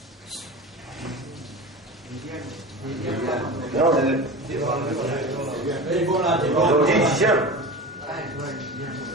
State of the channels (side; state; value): both; normal; correlation 0.30